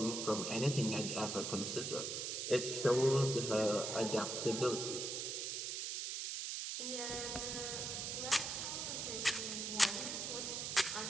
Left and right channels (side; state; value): right; noise; hiss, 3 dB below the sound